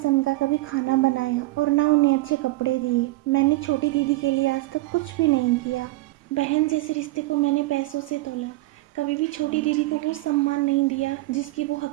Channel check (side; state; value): left; quieter; 19.6 dB